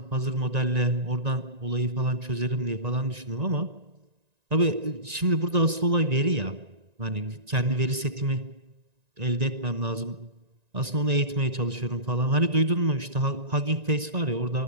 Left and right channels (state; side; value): late; left; 1.9 ms